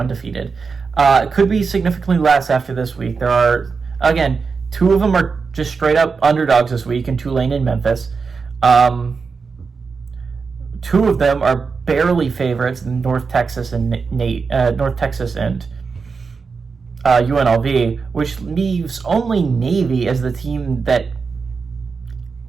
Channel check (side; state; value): left; quieter; 5.0 dB